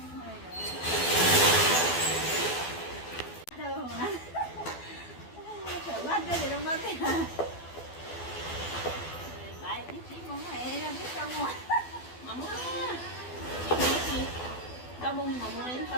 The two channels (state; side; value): late; right; 12 ms